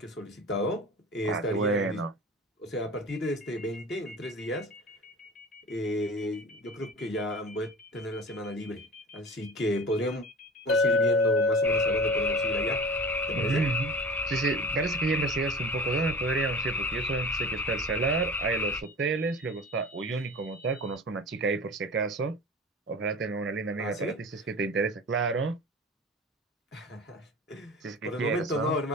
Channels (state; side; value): normal; both; correlation 0.36